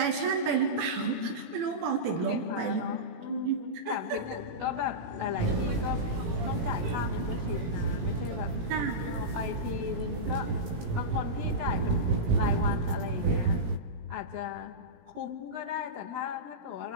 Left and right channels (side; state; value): left; late; 17 ms